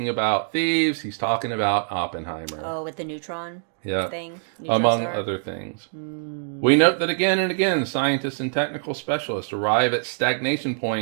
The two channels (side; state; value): left; silent; digital silence